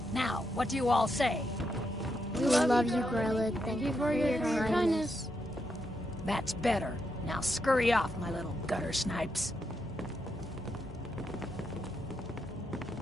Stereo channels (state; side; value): normal; both; correlation 0.82